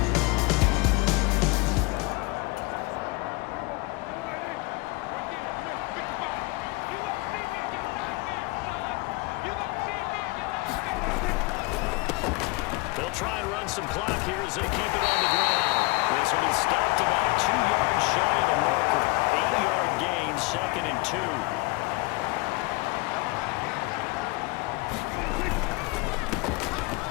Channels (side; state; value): right; quieter; 24.2 dB